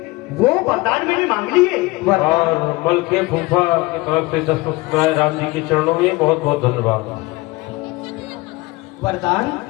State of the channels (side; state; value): right; quieter; 21.8 dB